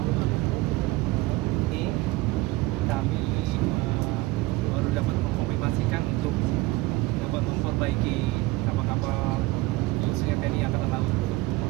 Ini kami baru dapat mengkonfirmasikan untuk dapat memperbaiki kapal-kapal khususnya TNI Angkatan Laut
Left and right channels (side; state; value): left; quieter; 19.9 dB